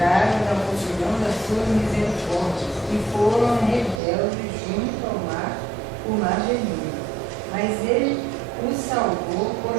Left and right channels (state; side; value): drops out; left; at 4.0 s